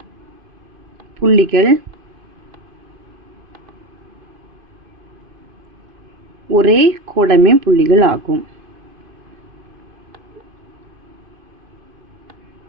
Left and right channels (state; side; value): late; left; 2.5 ms